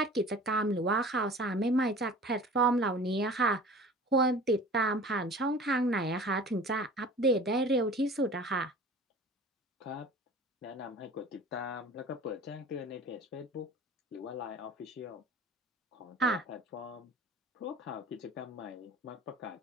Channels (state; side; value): normal; both; correlation 0.42